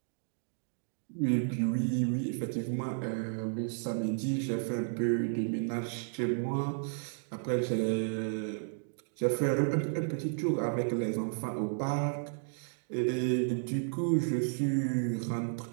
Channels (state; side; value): silent; left; digital silence